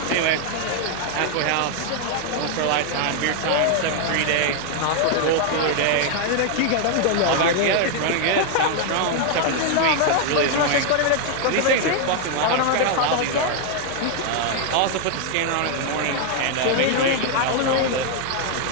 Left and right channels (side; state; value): both; different; correlation 0.00